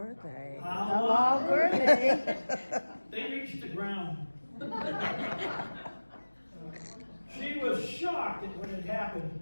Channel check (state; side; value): inverted; both; correlation -1.00